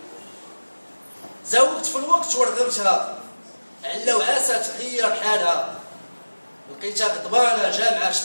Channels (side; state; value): both; inverted; correlation -1.00